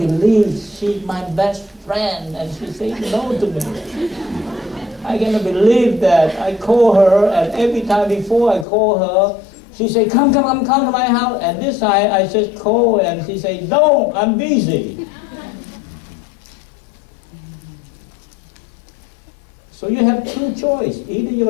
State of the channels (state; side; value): drops out; right; at 8.7 s